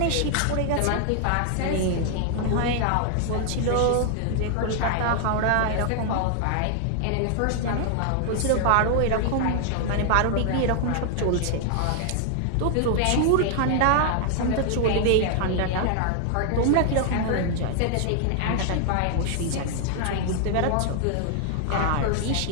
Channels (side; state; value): both; different; correlation 0.00